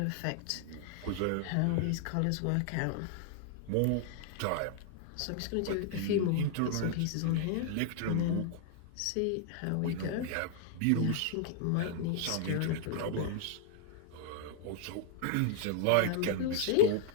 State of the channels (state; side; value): different; both; correlation 0.00